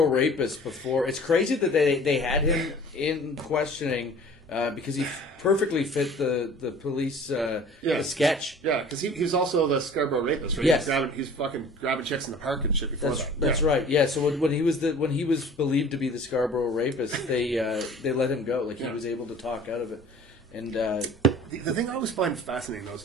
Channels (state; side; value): normal; both; correlation 0.47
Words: rapist before. It's crazy that they had him in questioning because he perfectly fit the police the sketch. Yeah, because he was also the Scarborough rapist, right? Yes. He's fucking grabbing chicks in the park and shit before that. That's right. Yeah. So when he was believed to be the Scarborough rapist, they let him go. Like he was able to talk out of it. And the thing I always find fascinating though